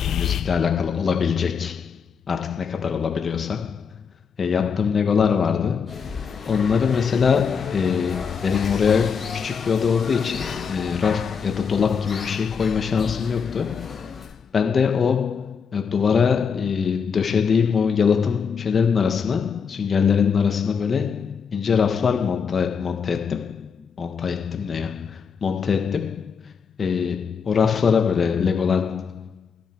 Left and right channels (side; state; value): right; quieter; 6.2 dB